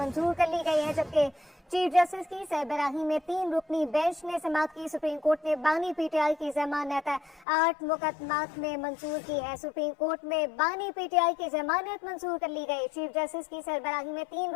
कर ली गई है, जबकि चीफ जस्टिस की सरबराही में 3 रुकनी बेंच ने समाअत की। सुप्रीम कोर्ट ने बानी पीटीआई की जमानत 8 मुकदमात में मंजूर की है। सुप्रीम कोर्ट में बानी पीटीआई की जमानत मंजूर कर ली गई। चीफ जस्टिस की सरबराही में 3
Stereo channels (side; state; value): right; drops out; at 7.5 s